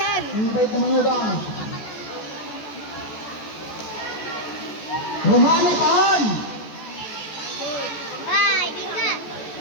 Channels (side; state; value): right; late; 14 ms